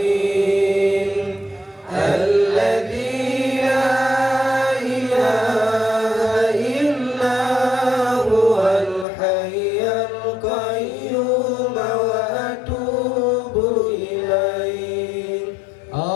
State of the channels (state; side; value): drops out; right; at 9.1 s